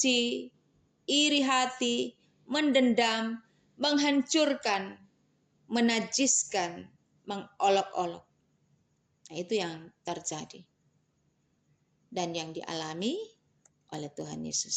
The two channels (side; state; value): both; identical; correlation 1.00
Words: iri hati, mendendam, menghancurkan, menajiskan, mengolok-olok. Nah, itu yang terjadi dan yang dialami oleh Tuhan